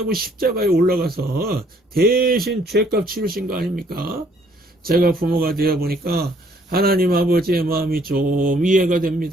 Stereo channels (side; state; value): both; normal; correlation 0.64